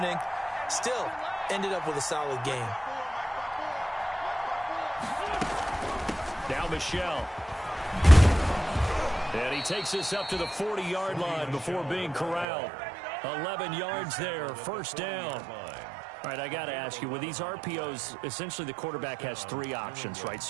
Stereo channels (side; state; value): left; drops out; at 12.5 s